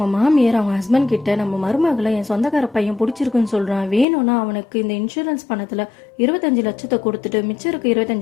மாமியார் அவங்க ஹஸ்பண்ட் கிட்ட நம்ம மருமகளை என் சொந்தக்கார பையன் பிடிச்சிருக்குன்னு சொல்றான், வேணும்னா அவனுக்கு இந்த இன்சூரன்ஸ் பணத்துல 25 லட்சத்தை கொடுத்துட்டு மிச்சம் இருக்க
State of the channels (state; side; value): drops out; right; at 4.0 s